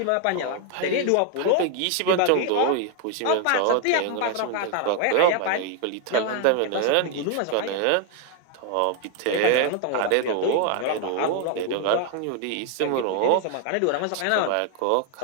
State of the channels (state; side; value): different; both; correlation 0.01